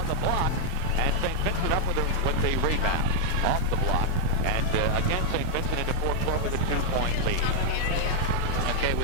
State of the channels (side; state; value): both; different; correlation 0.00